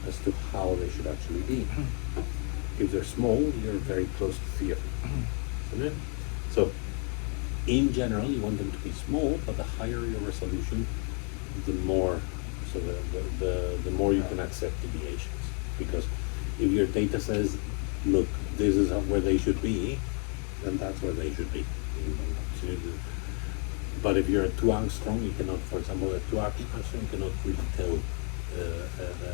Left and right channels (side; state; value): right; quieter; 39.5 dB